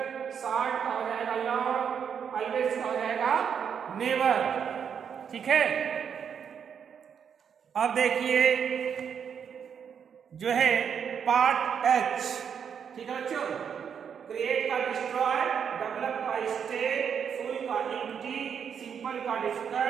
शॉर्ट का हो जाएगा लॉन्ग, ऑलवेज का हो जाएगा नेवर, ठीक है। अब देखिए जो है पार्ट एच, ठीक है बच्चों, क्रिएट का डिस्ट्रॉय, डेवलप का स्टे, फुल का एम्प्टी, सिंपल का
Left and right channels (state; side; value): quieter; left; 7.5 dB